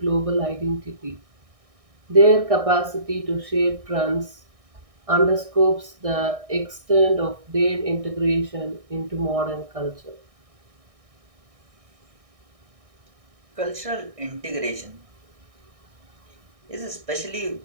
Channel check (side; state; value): left; late; 1.6 ms